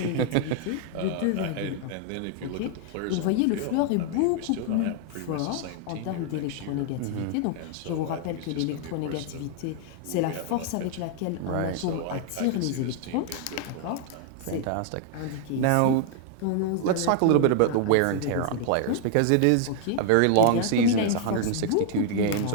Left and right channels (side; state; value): both; different; correlation 0.00